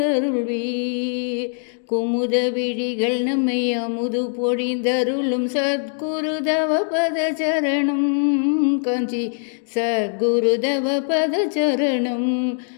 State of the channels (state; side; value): silent; right; digital silence